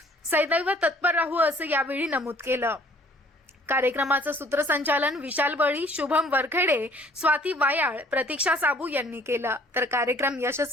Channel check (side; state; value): both; normal; correlation 0.56